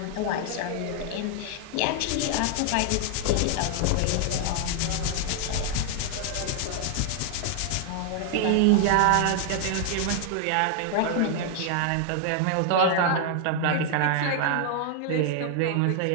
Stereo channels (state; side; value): different; both; correlation 0.00